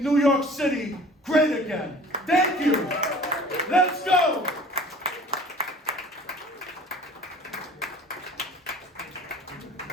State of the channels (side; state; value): both; normal; correlation 0.47